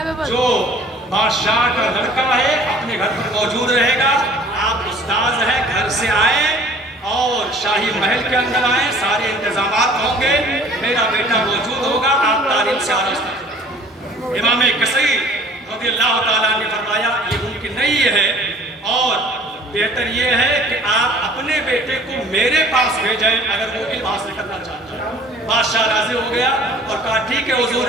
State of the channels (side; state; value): both; normal; correlation 0.50